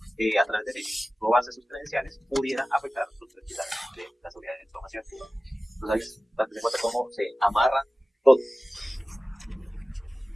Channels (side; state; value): both; normal; correlation 0.96